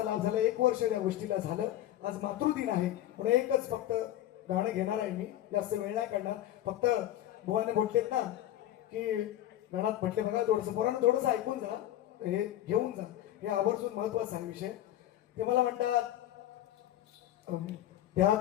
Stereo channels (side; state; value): right; quieter; 13.1 dB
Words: लाभ झाला. 1 वर्ष या गोष्टीला झालं. आज मातृदिन आहे म्हणून एकच फक्त गाणं घेणार आहे मी. जास्त वेळ नाही काढणार. फक्त बुवाने म्हटलेत ना की गाण्यात म्हटले बघा थोडंसं पोरांना थोडंसं ऐकून जा हे घेऊन जा. हे आवर्जून महत्वाचा आहे विषय. ते मला म्हणतात त्या